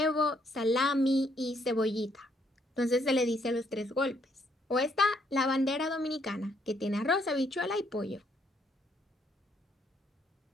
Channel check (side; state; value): both; normal; correlation 0.70